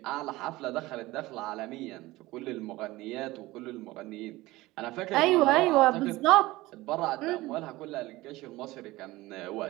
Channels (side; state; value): left; quieter; 19.1 dB